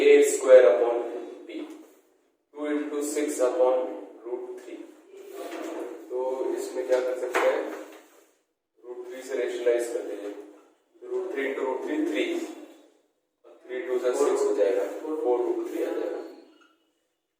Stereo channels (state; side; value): identical; both; correlation 1.00